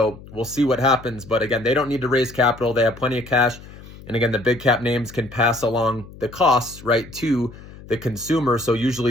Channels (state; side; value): noise; left; hum, 18 dB below the sound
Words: we'll see what happens. But again, they don't need to raise capital. They have plenty of cash. And again, the big cap names can pass along the costs, right, to the consumer. So